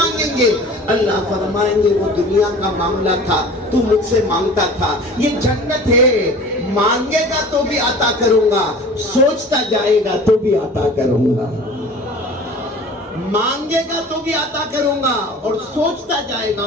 گے۔ اللہ فرمائیں گے وہ دنیا کا معاملہ تھا، تو مجھ سے مانگتا تھا، یہ جنت ہے، مانگے گا تو بھی عطا کروں گا، سوچتا جائے گا تو بھی عطا کروں گا، مانگے گا تو بھی عطا کروں گا اور سوچتا جائے گا،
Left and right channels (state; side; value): normal; both; correlation 0.42